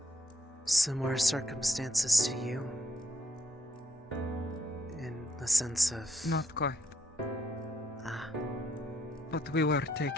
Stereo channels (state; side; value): normal; both; correlation 0.74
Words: similar circumstances to you? In the sense of... Not quite. Ah. But we were